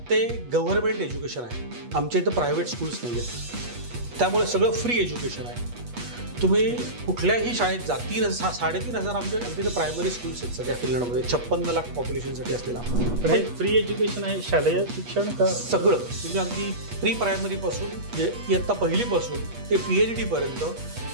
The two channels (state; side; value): late; left; 8.3 ms